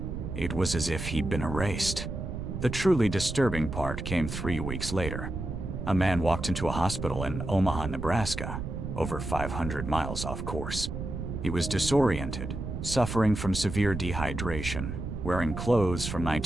It was as if he'd been erased. The truly disturbing part came 3 weeks later. A man walked into a hospital in Omaha, Nebraska, over 500 miles off course. He was disoriented, suffering from severe dehydration, wearing clothes from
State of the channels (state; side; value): noise; right; rumble, 5 dB below the sound